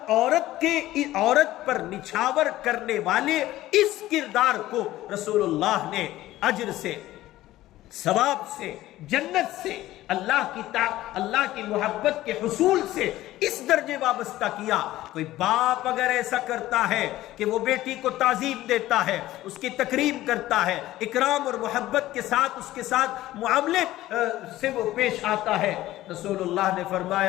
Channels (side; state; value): right; quieter; 15.5 dB